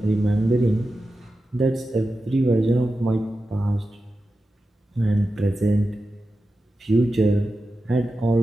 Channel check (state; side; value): normal; both; correlation 0.92